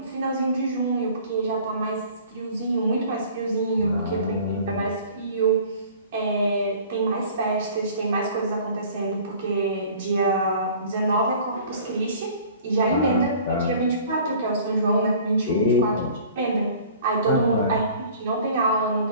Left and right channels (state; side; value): inverted; both; correlation -0.48